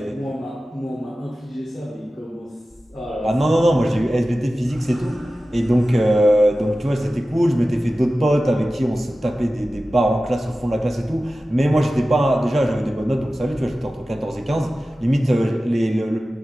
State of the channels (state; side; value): normal; both; correlation 0.95